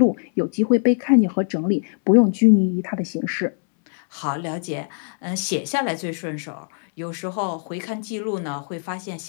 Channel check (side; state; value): right; silent; 64 dB below the other